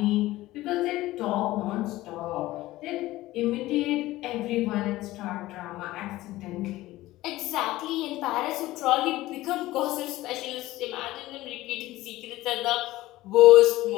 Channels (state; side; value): quieter; right; 17.1 dB